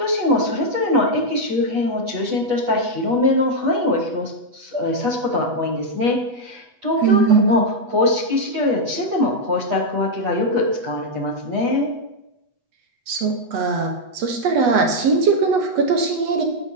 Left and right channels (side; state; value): left; late; 8.1 ms